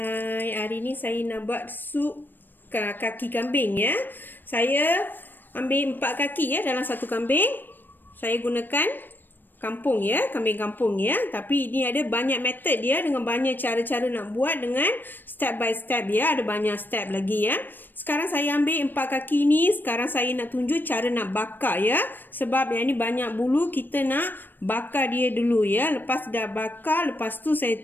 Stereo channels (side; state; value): right; late; 0.093 ms